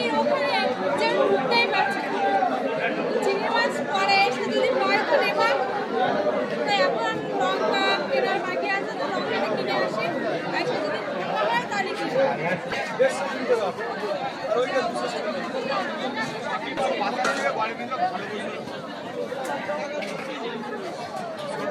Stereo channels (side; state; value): both; identical; correlation 1.00